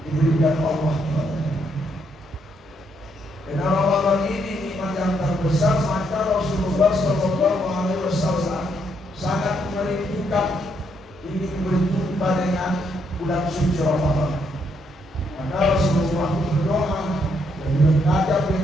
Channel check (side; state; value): both; normal; correlation 0.74